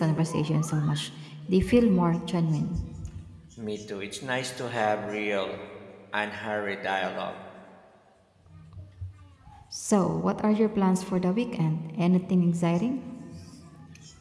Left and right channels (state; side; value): identical; both; correlation 1.00